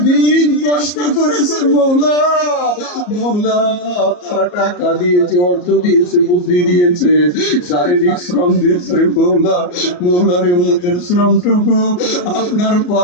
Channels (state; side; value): late; right; 34 ms